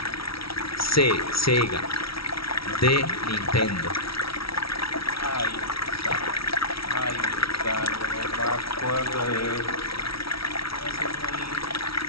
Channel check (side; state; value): right; late; 0.75 ms